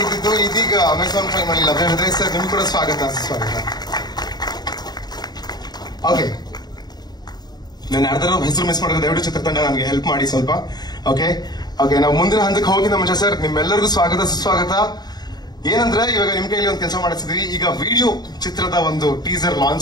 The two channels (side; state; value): right; late; 0.20 ms